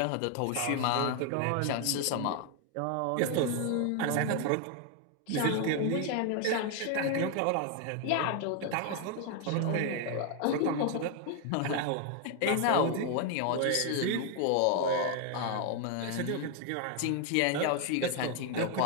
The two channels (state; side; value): different; both; correlation 0.00